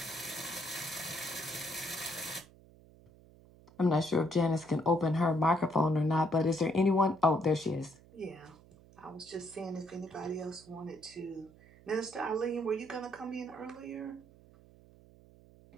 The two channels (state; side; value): noise; right; hum, 24 dB below the sound